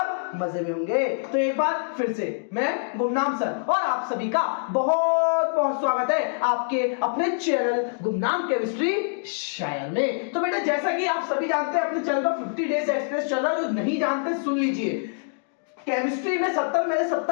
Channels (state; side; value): silent; right; digital silence